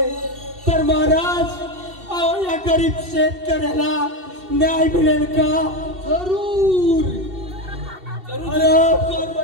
तर महाराज अहो या गरीब शेतकऱ्याला न्याय मिळेल का जरूर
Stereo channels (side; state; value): left; late; 2.7 ms